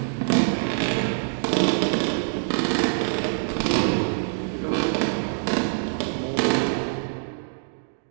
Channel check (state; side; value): silent; left; digital silence